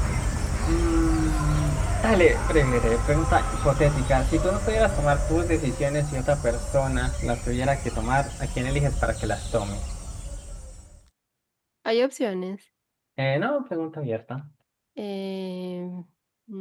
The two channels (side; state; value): both; identical; correlation 1.00